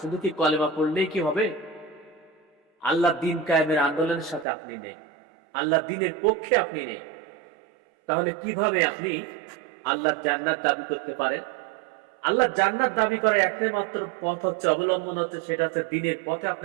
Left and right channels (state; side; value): drops out; left; at 4.5 s